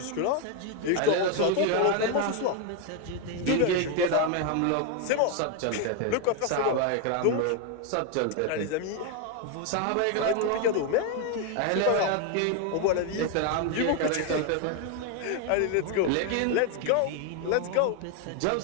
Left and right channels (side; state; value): both; different; correlation 0.01